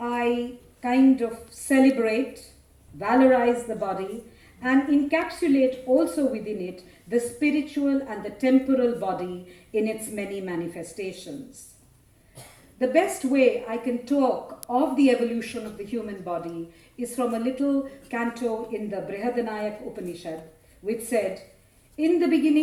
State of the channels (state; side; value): identical; both; correlation 1.00